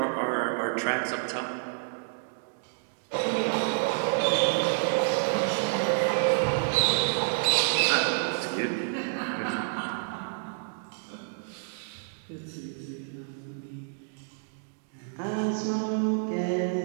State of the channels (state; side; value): silent; left; digital silence